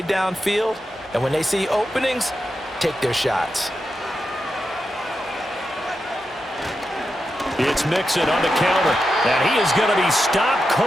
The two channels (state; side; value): normal; both; correlation 0.88